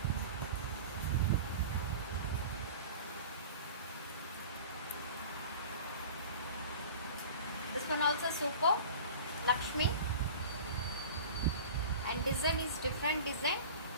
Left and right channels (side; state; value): both; inverted; correlation -0.38